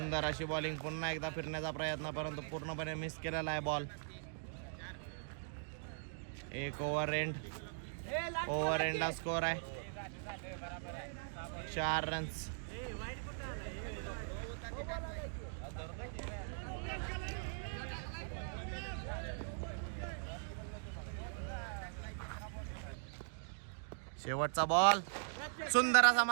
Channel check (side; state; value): left; silent; digital silence